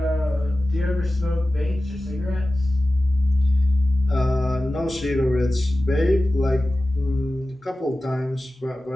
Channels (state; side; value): normal; both; correlation 0.95